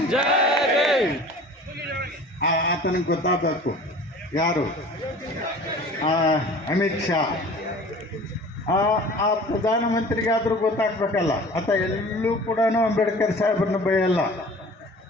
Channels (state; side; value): normal; both; correlation 0.43